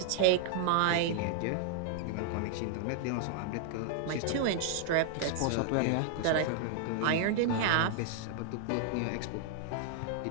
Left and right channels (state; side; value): different; both; correlation -0.01